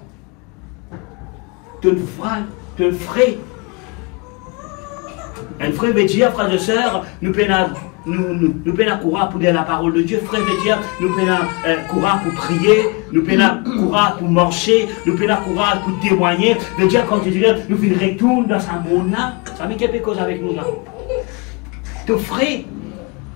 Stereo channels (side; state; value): right; quieter; 29.5 dB